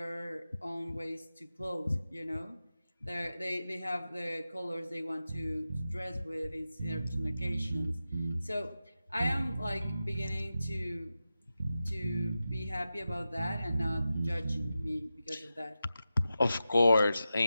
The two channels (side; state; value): both; inverted; correlation -0.92